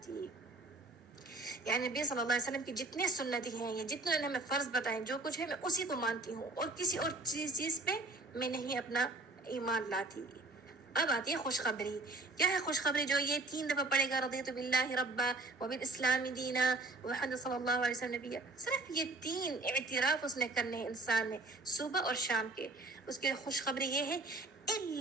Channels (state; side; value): quieter; left; 3.2 dB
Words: یعنی نبی صلی اللہ علیہ وسلم کی جتنے سنتیں ہیں یا جتنے انہوں نے ہمیں فرض بتائیں، جو کچھ ہے میں اسی کو مانتی ہوں اور کسی اور چیز پہ میں نہیں اپنا ایمان لاتی. اب آتی ہے خوشخبری. کیا ہے خوشخبری؟ جو یہ 3 دفعہ پڑھے گا، رضیت باللہ ربا وبالاسلام دینا محمد صلی اللہ علیہ وسلم نبی، صرف یہ 3 اعتراف اس نے کرنے انسان نے صبح اور شام کے. اس کے خوشخبری یہ ہے